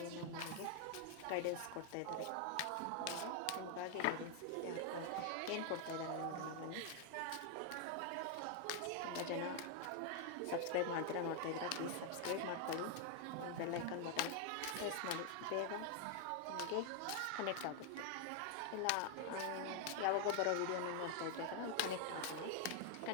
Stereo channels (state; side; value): different; both; correlation 0.00